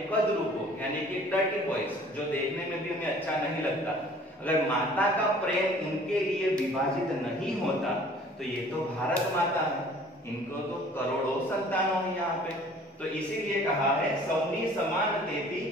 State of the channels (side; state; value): both; normal; correlation 0.51